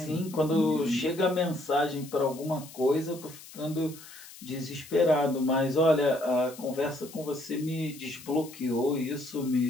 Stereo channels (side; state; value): left; noise; hiss, 18 dB below the sound